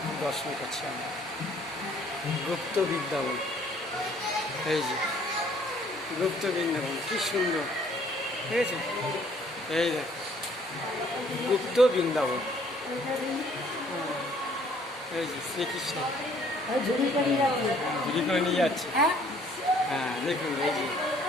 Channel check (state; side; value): normal; both; correlation 0.60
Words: দর্শন করছি আমরা। গুপ্ত বৃন্দাবন, এই যে গুপ্ত বৃন্দাবন কি সুন্দর, ঠিক আছে? এই দেখ গুপ্ত বৃন্দাবন, এই যে শ্রীকৃষ্ণ ঝুড়ি করে নিয়ে যাচ্ছে। হ্যাঁ দেখুন এই যে